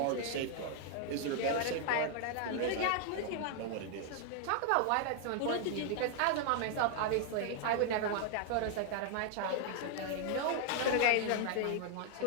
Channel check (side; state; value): both; different; correlation 0.00